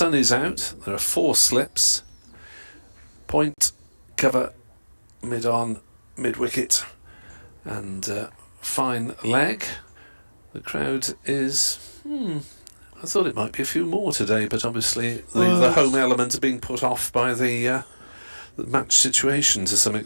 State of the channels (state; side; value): inverted; both; correlation -1.00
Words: is out. There are 4 slips. Point, cover, mid-on, mid-wicket, and fine leg. The crowd is... I thought it might be a few more today, but obviously the home element is being put off by the match situation to some